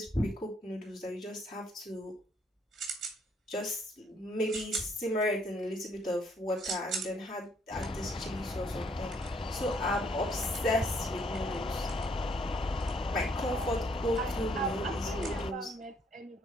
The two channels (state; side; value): normal; both; correlation 0.67